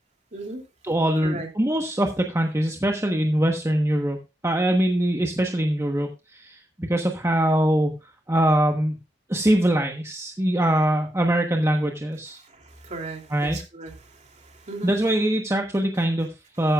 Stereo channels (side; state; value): both; normal; correlation 0.85